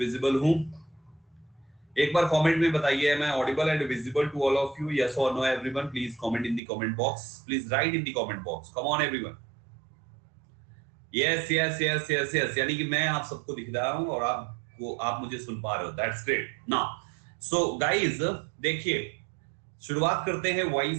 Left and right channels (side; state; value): left; drops out; at 6.6 s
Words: हूं? एक बार कमेंट में बताइए, मैं audible and visible to all of you? Yes और no everyone? Please comment in the comment box, please write in the comment box. Come on everyone. Yes yes yes yes yes, यानी कि मैं आप सबको दिख रहा हूं और आप मुझे सुन पा रहे हो। That's great. Now so guys, देखिए शुरुआत करते हैं